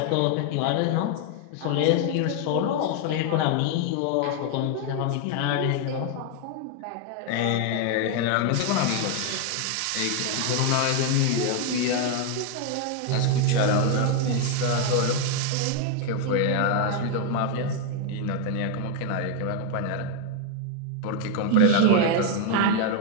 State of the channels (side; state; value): both; different; correlation 0.01